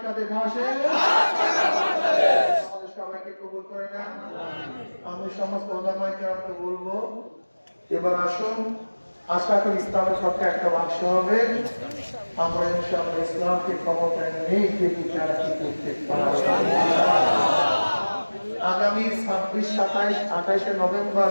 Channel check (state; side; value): inverted; both; correlation -1.00